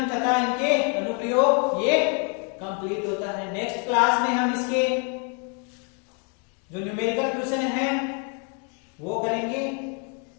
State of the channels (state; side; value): quieter; right; 38.6 dB